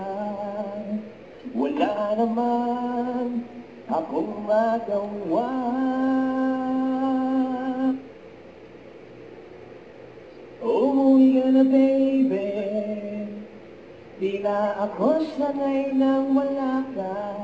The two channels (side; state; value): both; identical; correlation 1.00